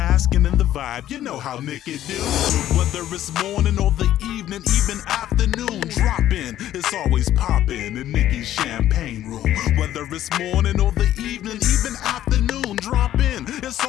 in the vibe. You know how Niki do. Whether it's morning or the evening, even afternoon, drop in. It's always poppin' in Niki's champagne room. Whether it's morning or the evening, even afternoon, drop in. It's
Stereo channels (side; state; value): right; quieter; 12.5 dB